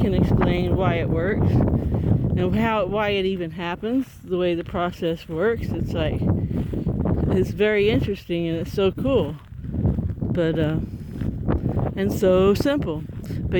explain why it works and why it even happens, the way the process works. It's like, it's very interesting and it's so cool, but and so simple.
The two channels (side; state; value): both; identical; correlation 1.00